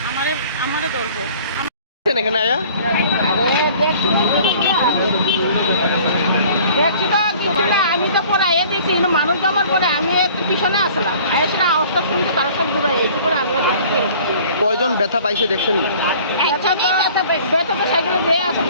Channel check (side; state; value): both; inverted; correlation -0.50